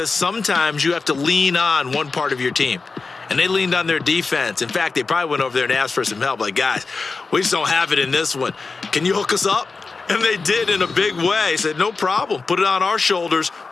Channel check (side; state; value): right; quieter; 4.2 dB